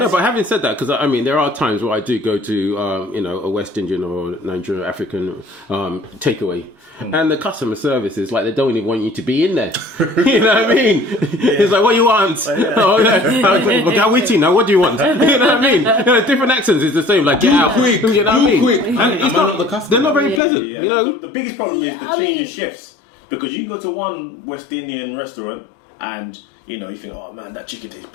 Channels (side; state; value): right; drops out; at 20.4 s